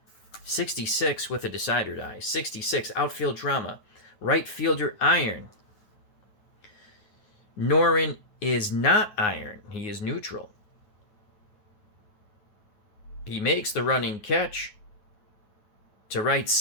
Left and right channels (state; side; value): late; right; 9.5 ms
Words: 66 with a decider die. 66, outfield drama. Right fielder iron. Norin is not iron. He is neutral. He makes the running catch to right